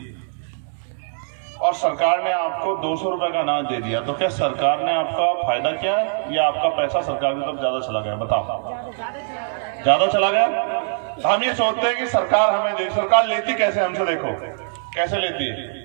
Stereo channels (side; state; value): left; silent; digital silence